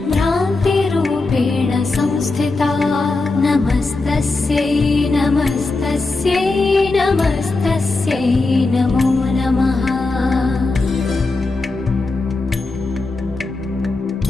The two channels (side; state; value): right; quieter; 3.4 dB